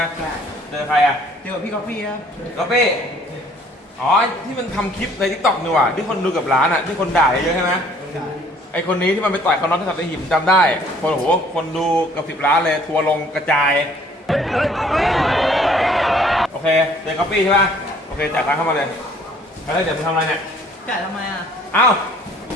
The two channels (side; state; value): both; normal; correlation 0.58